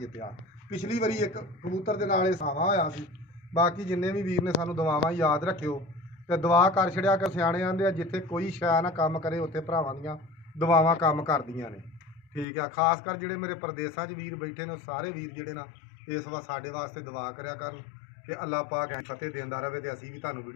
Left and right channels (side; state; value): right; drops out; at 12.5 s